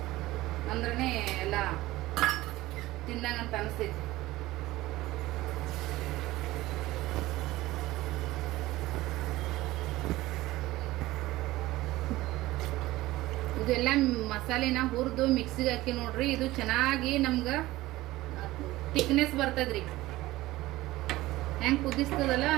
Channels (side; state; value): left; quieter; 17.7 dB